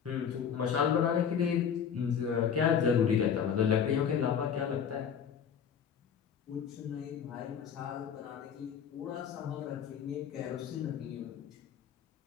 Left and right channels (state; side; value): quieter; right; 7.7 dB